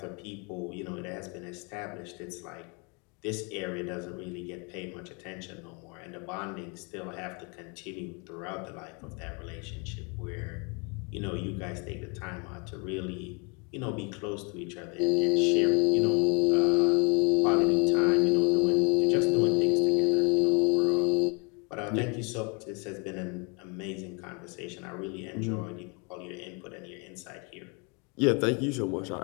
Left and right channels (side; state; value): right; quieter; 33.0 dB